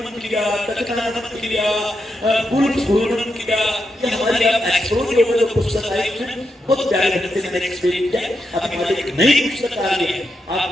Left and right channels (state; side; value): normal; both; correlation 0.85